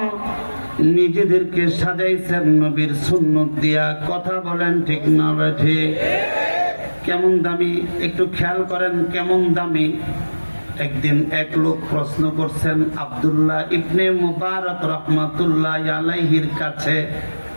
নিজেদেরকে সাজাইছেন নবীর সুন্নত দিয়া। কথা বলেন ঠিক না ঠিক? কেমন দামি একটু খেয়াল করেন, কেমন দামি। একদিন এক লোক প্রশ্ন করছেন আব্দুল্লাহ ইবনে মুবারক রাহমাতুল্লাহ আলাইহির কাছে।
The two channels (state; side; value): inverted; both; correlation -1.00